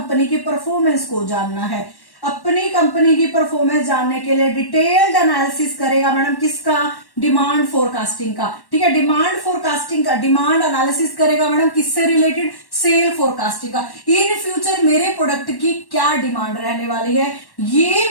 की परफॉर्मेंस को जानना है, अपनी कंपनी की परफॉर्मेंस जानने के लिए डिटेल्ड एनालिसिस करेगा मैडम किसका, डिमांड फोरकास्टिंग का। ठीक है, डिमांड फोरकास्टिंग का डिमांड एनालिसिस करेगा मैडम किससे रिलेटेड, सेल फोरकास्टिंग का। इन फ्यूचर मेरे प्रोडक्ट की क्या डिमांड रहने वाली है,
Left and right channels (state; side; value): late; right; 1.1 ms